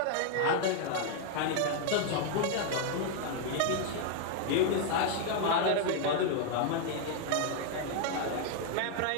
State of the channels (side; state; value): both; different; correlation 0.00